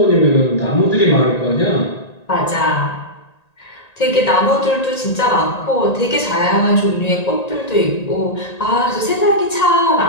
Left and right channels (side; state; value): right; late; 1.8 ms